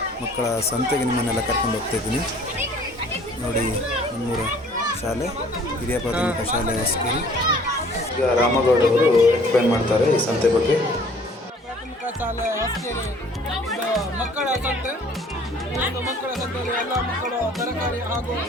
ಮಕ್ಕಳ ಸಂತೆಗೆ ನಿಮ್ಮನ್ನೆಲ್ಲ ಕರ್ಕೊಂಡು ಹೋಗ್ತಾಯಿದ್ದೀನಿ. ನೋಡಿ, ನಮ್ಮೂರ ಶಾಲೆ ಹಿರಿಯ ಪ್ರಾಥಮಿಕ ಶಾಲೆ ಹೊಸಕೇರಿ. ಈಗ ರಾಮಗೌಡ ಅವರು ಎಕ್ಸ್ಪ್ಲೇನ್ ಮಾಡ್ತಾರೆ ಈ ಸಂತೆ ಬಗ್ಗೆ. ಪ್ರಾಥಮಿಕ ಶಾಲೆ ಹೊಸಕೇರಿ ಮಕ್ಕಳ ಸಂತೆ. ಮಕ್ಕಳ ಸಂತೆಯಲ್ಲಿ ಎಲ್ಲ ಮಕ್ಕಳು ತರಕಾರಿ ಹಾಗೂ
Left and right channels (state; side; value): normal; both; correlation 0.54